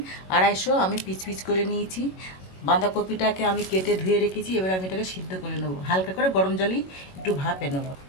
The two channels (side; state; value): right; late; 21 ms